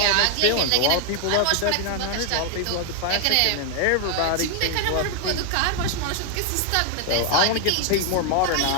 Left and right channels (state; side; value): different; both; correlation 0.00